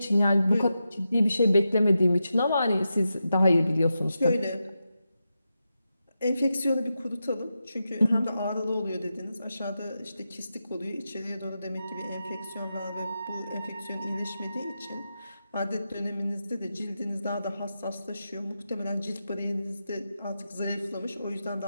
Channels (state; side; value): inverted; both; correlation -0.89